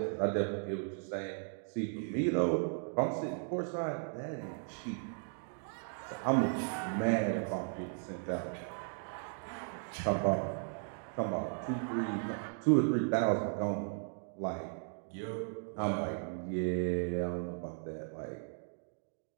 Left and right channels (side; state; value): left; silent; 54 dB below the other